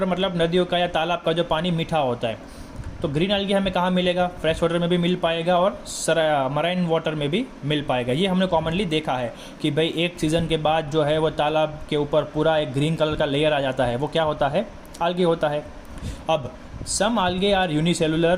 मतलब नदियों का या तालाब का जो पानी मीठा होता है। तो ग्रीन आल्गी हमें कहाँ मिलेगा, फ्रेश वाटर में भी मिल पाएगा और मराइन वाटर में भी मिल पाएगा। ये हमने कॉमनली देखा है कि भाई एक सीज़न के बाद जो है वो तालाब के ऊपर पूरा एक ग्रीन कलर का लेयर आ जाता है, वो क्या होता है, आल्गे होता है। अब some algae are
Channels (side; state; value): both; identical; correlation 1.00